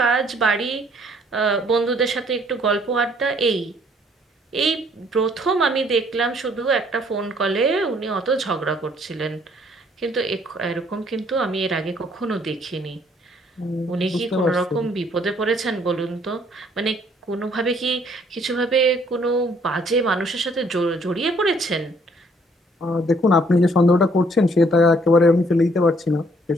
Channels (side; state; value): both; normal; correlation 0.63